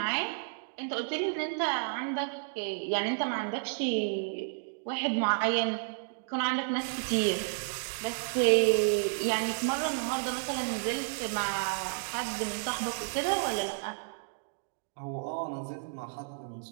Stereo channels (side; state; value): left; silent; digital silence